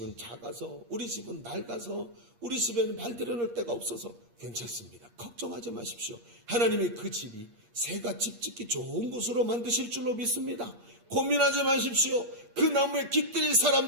작아서, 우리 집은 낡아서, 우리 집에는 발 들여놓을 데가 없어서 괜찮습니다. 걱정하지 마십시오. 하나님이 그 집이 새가 집 짓기 좋은 곳으로 만드실 줄로 믿습니다. 고민하지 마십시오. 그 나무에 깃들일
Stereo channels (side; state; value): left; late; 8.5 ms